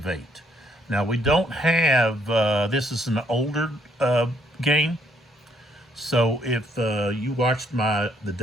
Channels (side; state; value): both; normal; correlation 0.69